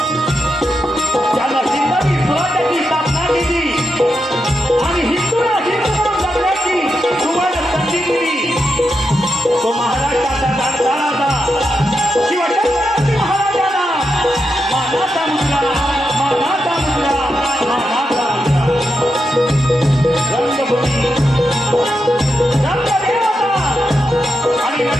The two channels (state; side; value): normal; both; correlation 0.86